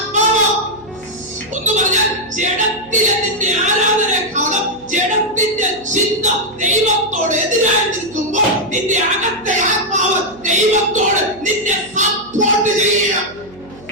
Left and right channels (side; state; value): right; noise; hum, 23 dB below the sound